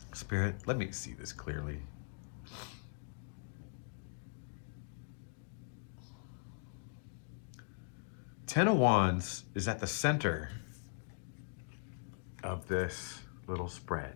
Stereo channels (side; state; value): right; silent; digital silence